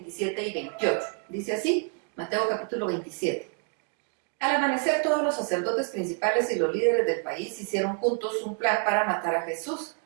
y 28. Dice así, Mateo capítulo 27. Al amanecer, todos los sacerdotes principales y los líderes del país hicieron juntos un plan para matar a Jesús.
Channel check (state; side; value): quieter; left; 35.7 dB